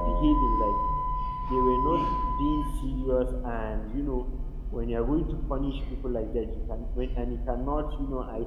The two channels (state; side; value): identical; both; correlation 1.00